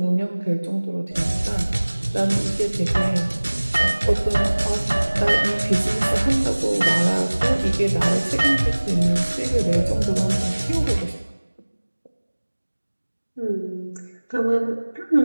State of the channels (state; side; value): inverted; both; correlation -1.00